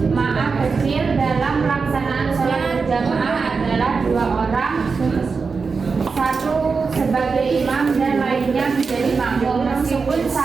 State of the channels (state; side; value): quieter; left; 4.9 dB